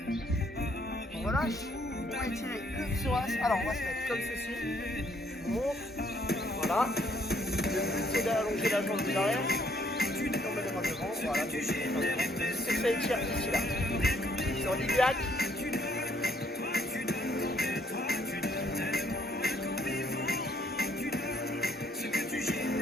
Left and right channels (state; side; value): normal; both; correlation 0.67